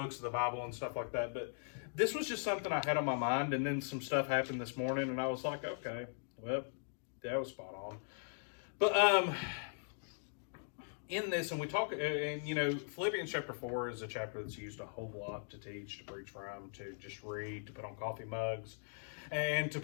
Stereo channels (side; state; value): right; silent; digital silence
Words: of the Bible and stuff like that. But this was just something I had on my mind, and then some stuff happened this morning, and I was like, okay, well, that was spot on. But in this, and we talk, and Philippians chapter 4 is a chapter that's used a whole lot to teach, to preach from, to just read, to put on coffee mugs, and to